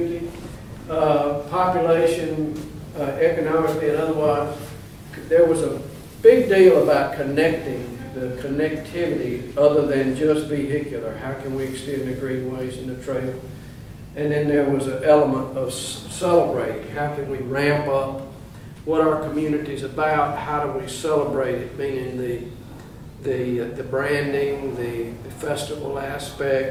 population, economically and otherwise. There was a big deal about connecting, the connectivity other than just vehicular. How can we extend the greenways and the trail? And then there was an element of celebrating. How can we ramp up what our community is about? How do we celebrate it? Meaning the branding, the festival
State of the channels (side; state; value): both; identical; correlation 1.00